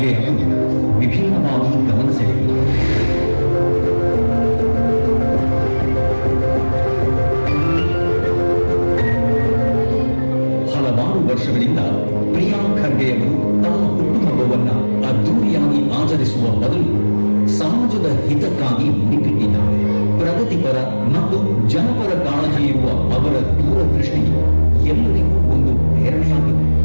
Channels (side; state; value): both; inverted; correlation -1.00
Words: ಅವರು ವಿಭಿನ್ನವಾಗಿ ಗಮನ ಸೆಳೆದರು. ಹಲವಾರು ವರ್ಷಗಳಿಂದ ಪ್ರಿಯಾಂಕ್ ಖರ್ಗೆ ಅವರು ತಮ್ಮ ಹುಟ್ಟುಹಬ್ಬವನ್ನ ಅದ್ದೂರಿಯಾಗಿ ಆಚರಿಸುವ ಬದಲು ಸಮಾಜದ ಹಿತಕ್ಕಾಗಿ ಮುಡಿಪಿಟ್ಟಿದ್ದಾರೆ. ಪ್ರಗತಿಪರ ಮತ್ತು ಜನಪರ ಕಾಳಜಿ ಇರುವ ಅವರ ದೂರದೃಷ್ಟಿ ಎಲ್ಲರಿಗೂ ಒಂದು ಪ್ರೇರಣೆಯಾಗಿದೆ.